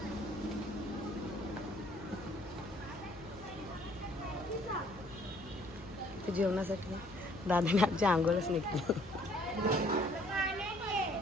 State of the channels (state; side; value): noise; left; hum, 19 dB below the sound